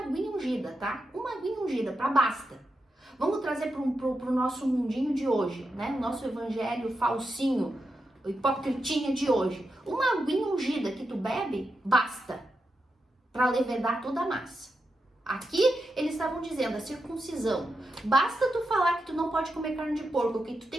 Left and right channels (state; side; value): normal; both; correlation 0.87